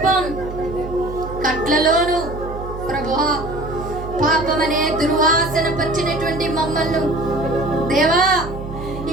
కట్లలోను ప్రభువా, పాపం అనే దుర్వాసన పచ్చినటువంటి మమ్మల్ని దేవా,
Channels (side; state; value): right; noise; hum, 10 dB below the sound